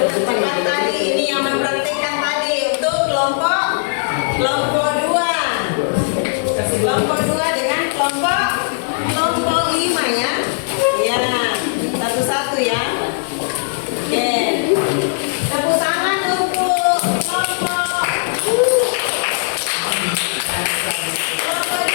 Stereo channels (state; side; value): silent; right; digital silence